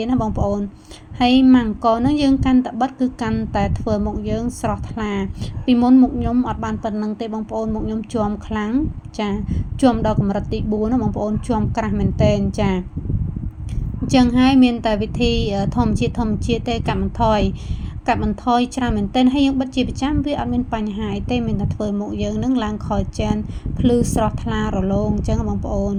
តណាបងប្អូនហើយម៉ាំងកនោះយើងកាន់តែបិទគឺកាន់តែធ្វើមុខយើងស្រស់ថ្លាពីមុនមុខខ្ញុំអត់បានប៉ុណ្្នឹងទេបងប្អូនមុខខ្ញុំជាំខ្លាំងចាជាំដល់កម្រិតទី4ណាបងប្អូនជាំក្រាស់មែនតែនចាអញ្ចឹងហើយមានតែវិធីធម្មជាតិទេកាត់បន្ថយច្រើនមែនទែនហើយយើងបិទជាប្រចាំវាអត់មានបញ្ហាអីទេមានតែធ្វើមុខយើងនឹងឡើងខលចានភ្លឺស្រស់ថ្លារលោងអញ្ចឹងបងប្អូន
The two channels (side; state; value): both; identical; correlation 1.00